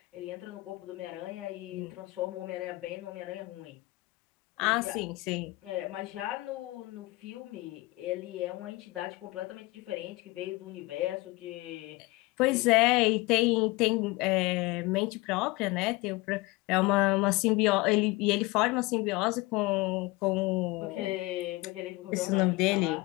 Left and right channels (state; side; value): quieter; right; 22.0 dB